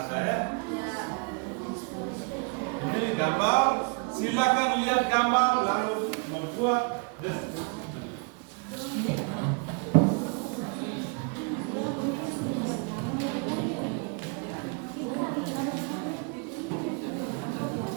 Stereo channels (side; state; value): left; quieter; 34.4 dB